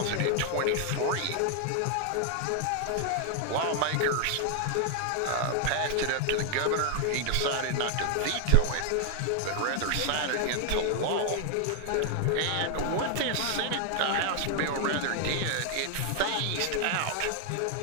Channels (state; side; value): different; both; correlation 0.00